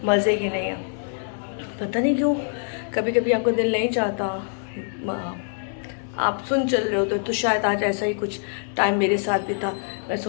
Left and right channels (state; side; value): silent; right; digital silence